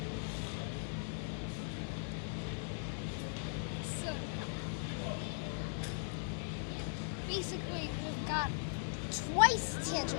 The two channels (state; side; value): silent; right; digital silence